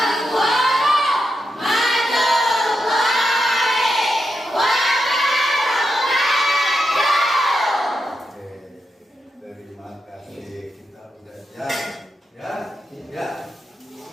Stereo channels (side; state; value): both; normal; correlation 0.86